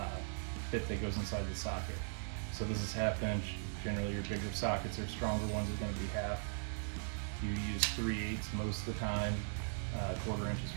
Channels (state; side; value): silent; left; digital silence